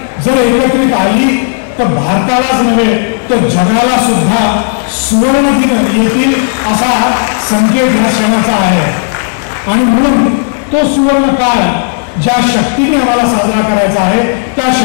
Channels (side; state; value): right; silent; digital silence